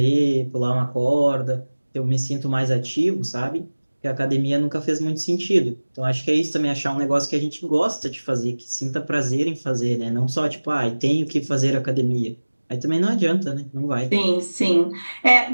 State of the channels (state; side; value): inverted; both; correlation -1.00